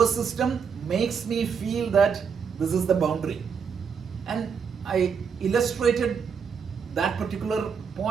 system makes me feel that this is the boundary. And I illustrated that particular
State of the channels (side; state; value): left; quieter; 6.4 dB